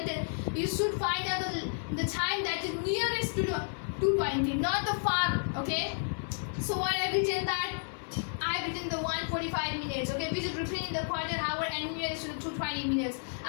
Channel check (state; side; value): silent; right; 57 dB below the other